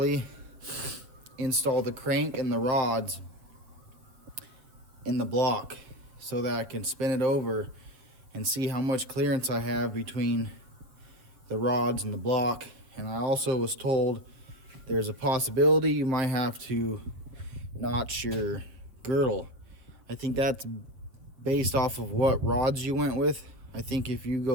install the crank and the rods in the block so that I can spin it over and see how much clearance I have between the rods and the block. And I also was told there's a possibility you might have to notch your girdle. I think that's based off of what rods you went with. I think if you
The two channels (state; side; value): late; left; 7.4 ms